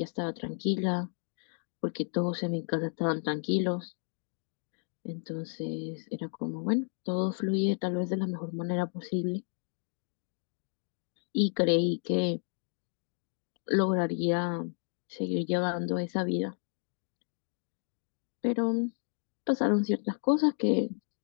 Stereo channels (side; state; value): right; silent; 56 dB below the other